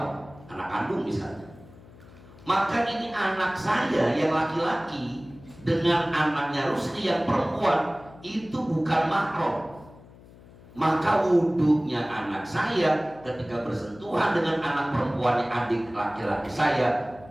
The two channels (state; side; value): noise; left; hum, 22 dB below the sound